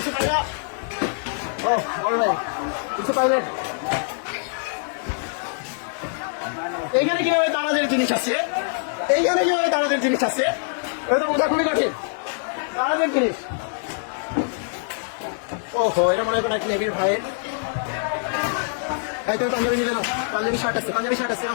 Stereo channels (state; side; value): silent; right; digital silence